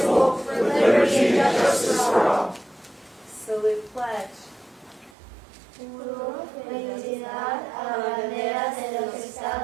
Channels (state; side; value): drops out; left; at 5.1 s